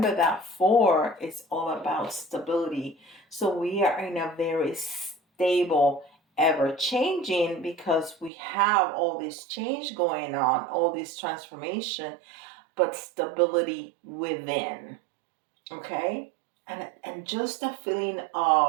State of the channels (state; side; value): drops out; left; at 8.3 s